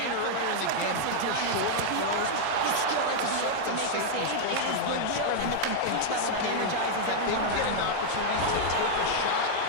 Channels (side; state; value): both; different; correlation -0.01